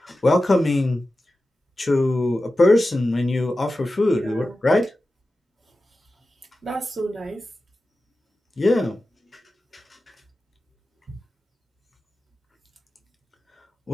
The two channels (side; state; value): both; normal; correlation 0.94